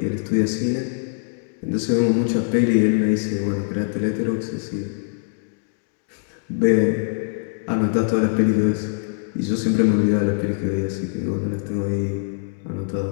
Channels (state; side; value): silent; right; digital silence